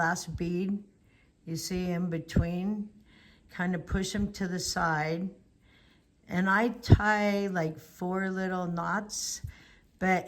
bead, you see in between, kind of push them to the side. And I tie like 4 little knots,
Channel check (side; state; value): both; identical; correlation 1.00